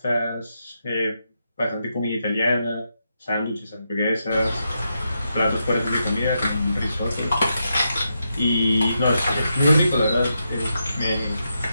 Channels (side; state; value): both; inverted; correlation -0.84